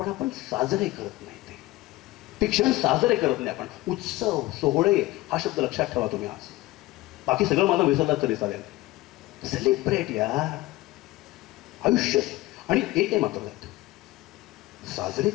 आपण साजरे करत नाही. ते क्षण साजरे करत नाही आपण. उत्सव, सोहळे हा शब्द लक्षात ठेवा तुम्ही आज. बाकी सगळं माझं विसरलात तरी चालेल. सेलिब्रेट यार आयुष्य. आणि एक आहे मात्र, साजरे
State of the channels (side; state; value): right; quieter; 18.5 dB